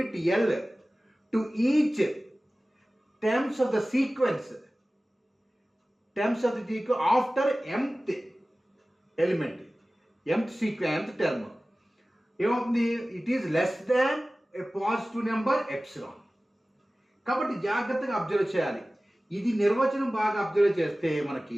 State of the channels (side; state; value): both; normal; correlation 0.97